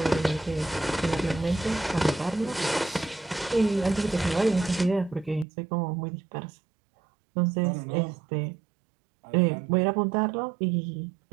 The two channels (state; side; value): drops out; left; at 5.5 s